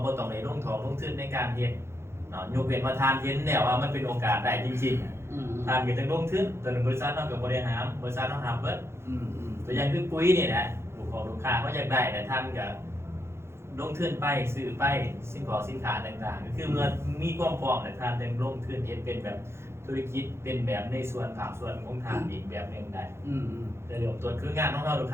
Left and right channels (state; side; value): late; left; 0.12 ms